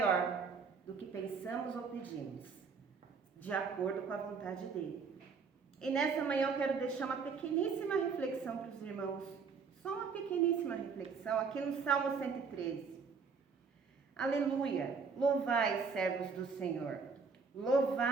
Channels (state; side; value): quieter; left; 5.3 dB